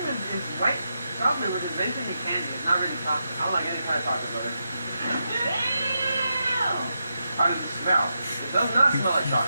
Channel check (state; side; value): inverted; both; correlation -0.86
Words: white chocolate, which is basically candy. It's not really chocolate. I don't like any kind of chocolate, brother. How does it smell? It does not smell like